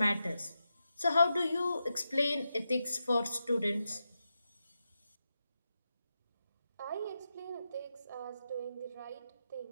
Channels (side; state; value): both; inverted; correlation -0.88